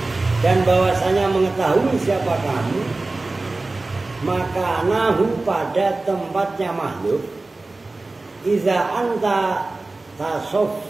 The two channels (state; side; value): quieter; left; 3.2 dB